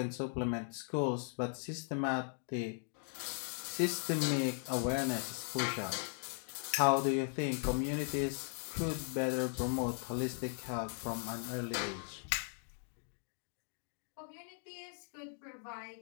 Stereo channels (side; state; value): right; silent; 52 dB below the other